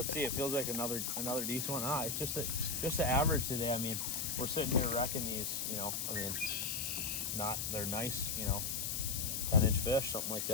let's see. It feels like another decent one. It's just the average today. I mean, we're sitting here wrecking these. You know, I mean, they're nice. You know, 10-inch fish, something like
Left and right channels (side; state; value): left; noise; hiss, 1 dB below the sound